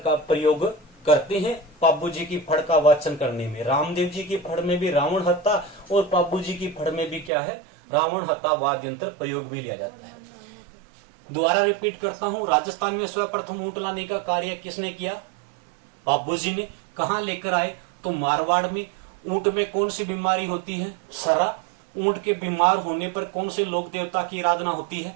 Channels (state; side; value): drops out; left; at 7.3 s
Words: प्रयोग करते हैं पाब्बू जी की फड़ का वाचन करने में। रामदेव जी की फड़ में भी रावण हत्ता और पाब्बू जी की फड़ में भी क्या है, रावण हत्ता वाद्य यंत्र प्रयोग भी लिया जाता है। दोबारा रिपीट करता हूं, राजस्थान में सर्वप्रथम ऊंट लाने का कार्य किसने किया, पाब्बू जी ने। कहां लेकर आए, तो मारवाड़ में। ऊंट में कौन सी बीमारी होती है, सरा। ऊंट के बीमार होने पर कौन से लोक देवता की आराधना होती है,